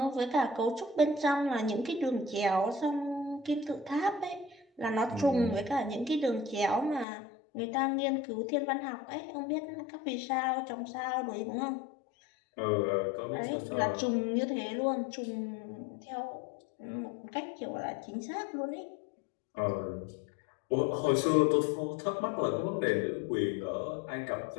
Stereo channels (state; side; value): drops out; right; at 7.1 s